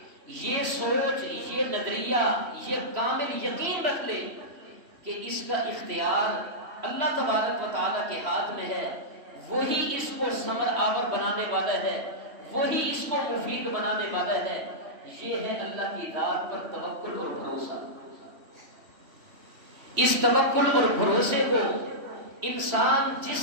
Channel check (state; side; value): late; left; 3.1 ms